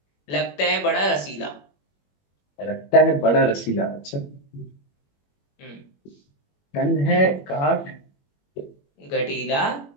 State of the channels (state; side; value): late; right; 21 ms